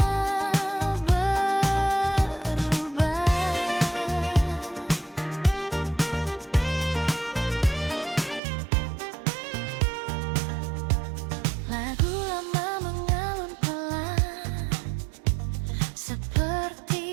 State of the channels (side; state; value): left; drops out; at 8.4 s